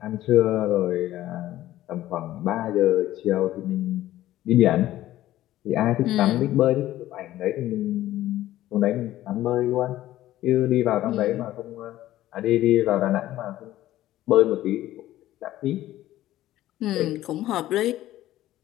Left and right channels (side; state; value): right; quieter; 14.4 dB